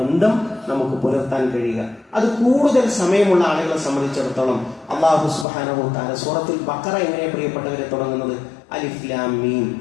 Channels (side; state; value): right; drops out; at 5.5 s